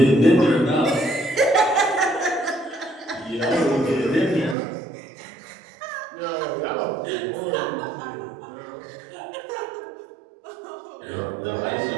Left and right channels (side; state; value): left; drops out; at 4.5 s